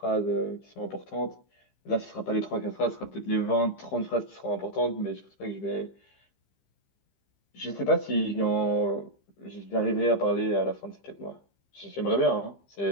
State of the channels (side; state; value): right; late; 15 ms